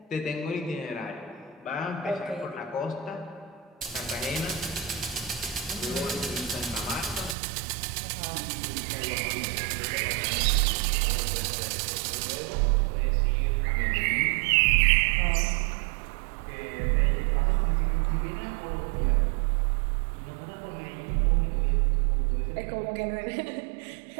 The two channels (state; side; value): drops out; left; at 7.4 s